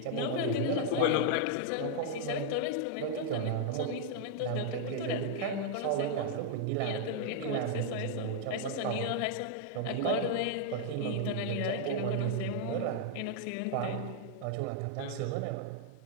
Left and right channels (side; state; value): both; different; correlation -0.01